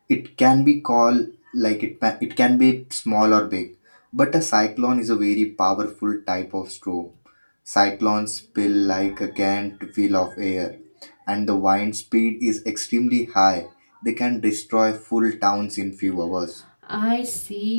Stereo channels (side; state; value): both; inverted; correlation -1.00